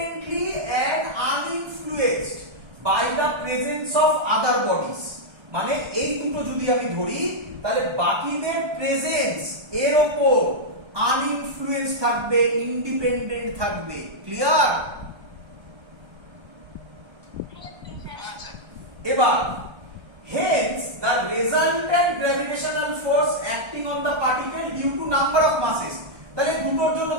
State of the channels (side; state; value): left; late; 1.3 ms